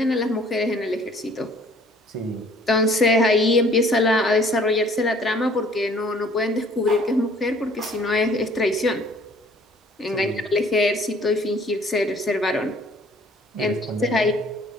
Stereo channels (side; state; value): both; normal; correlation 0.56